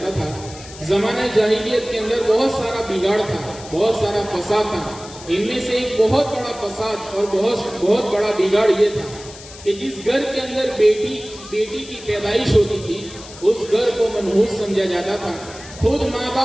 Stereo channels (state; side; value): noise; left; hiss, 17 dB below the sound